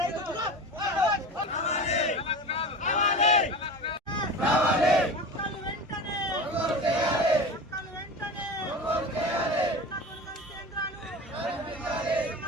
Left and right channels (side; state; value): both; normal; correlation 0.31